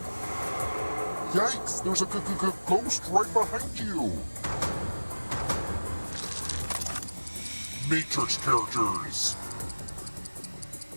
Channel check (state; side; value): inverted; both; correlation -1.00